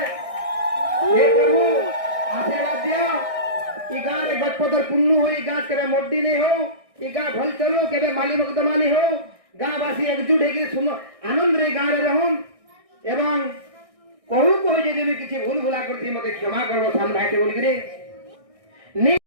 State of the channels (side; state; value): left; late; 1.6 ms